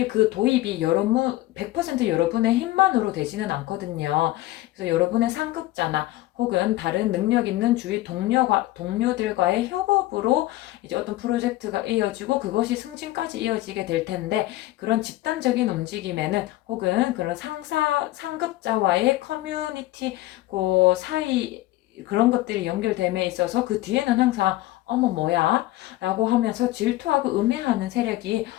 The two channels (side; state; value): right; quieter; 16.9 dB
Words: 그 도입이 100% 여러분의 힘만으로 되지는 않거든요. 그래서 여러분의 상급자나 혹은 다른 능력 있는 주위 동료들과의 협업으로 이제 어떤 프로젝트가 이어지고 그것이 승진까지 이어지게 될 텐데, 그런 집단적인 움직임에는 혹은 그런 상급자와의 커뮤니티 그 사이 그런 것들이 연결됨에 있어서 그 뒤에는 항상 어머 뭐야? 라고 하면서 질투하고 음해하는 세력이